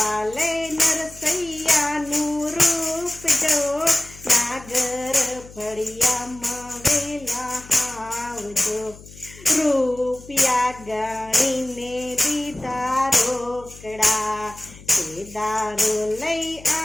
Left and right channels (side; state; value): left; noise; hum, 19 dB below the sound